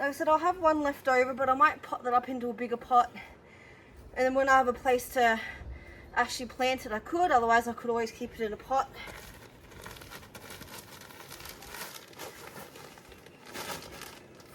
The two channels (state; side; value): identical; both; correlation 1.00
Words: I said, I'll have one left over, but I might pot that up into a bigger pot. And then when I have a place to actually plant it, I could. Otherwise, I could always keep it in a pot.